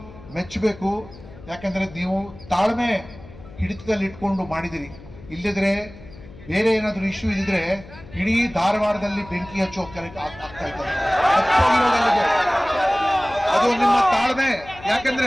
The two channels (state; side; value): noise; left; hum, 18 dB below the sound